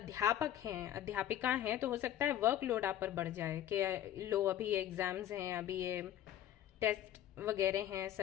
हैं, अध्यापिका हैं, तो हो सकता है वर्कलोड आप पर बढ़ जाए कि लो अभी ये एग्जाम्स हैं, अभी ये टेस्ट वगैरह हैं,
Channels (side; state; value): right; quieter; 12.0 dB